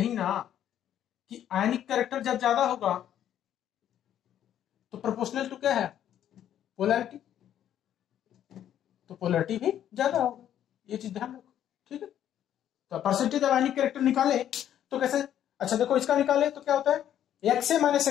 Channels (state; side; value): quieter; right; 10.7 dB